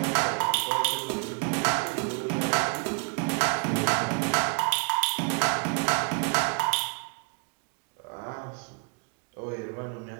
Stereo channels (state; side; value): quieter; left; 38.3 dB